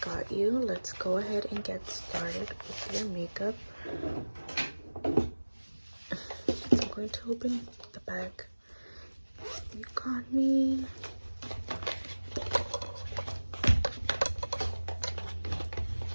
got you. Let's go ahead and get started with your makeup. I'm going to open the bag. You got me.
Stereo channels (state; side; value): inverted; both; correlation -1.00